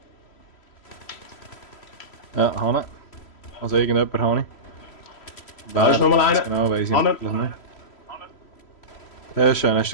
Ja, Hanne. Also irgendjemand habe ich. Da ist nochmal einer. Genau, weiss ich Hanne. natürlich nicht. Sehr schön. Hast du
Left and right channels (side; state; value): right; late; 3.1 ms